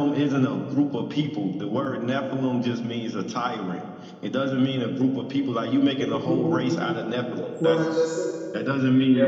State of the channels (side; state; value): both; identical; correlation 1.00